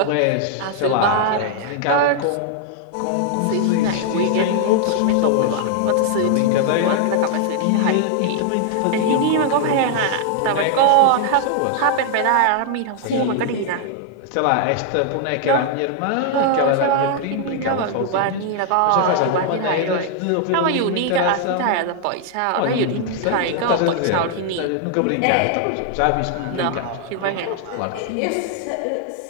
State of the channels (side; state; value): both; different; correlation 0.00